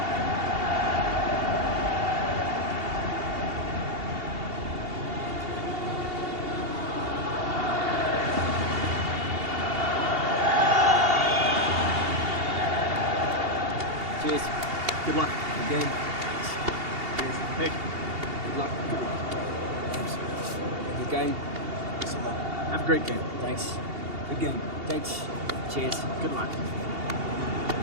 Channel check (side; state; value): left; late; 2.8 ms